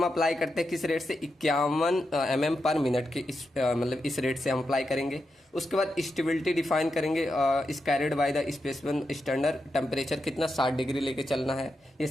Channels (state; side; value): normal; both; correlation 0.87